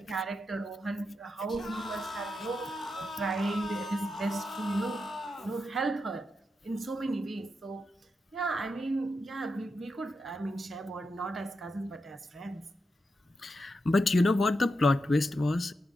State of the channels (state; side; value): normal; both; correlation 0.86